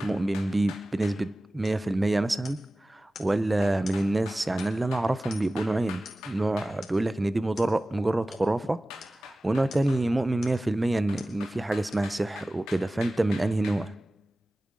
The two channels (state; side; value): normal; both; correlation 0.97